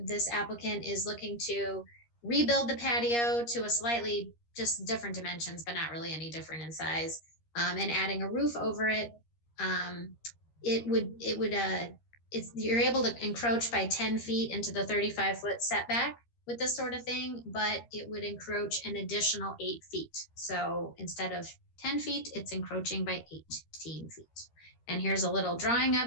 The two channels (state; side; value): late; right; 13 ms